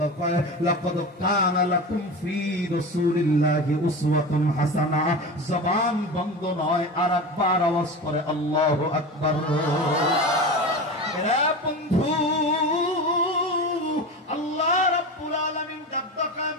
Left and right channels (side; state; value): both; normal; correlation 0.28